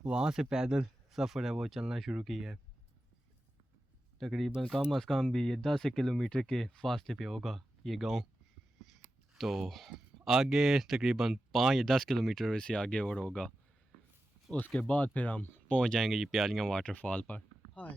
वहाँ से पैदल सफ़र है वो चलना शुरू किया है। तकरीबन कम अज़ कम भी ये 10 किलोमीटर के फासले पे होगा ये गांव। तो आगे तकरीबन 5 या 10 किलोमीटर से आगे और होगा, उसके बाद फिर हम पहुंच जाएंगे ये प्यालियां वाटरफॉल पर।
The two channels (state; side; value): normal; both; correlation 0.92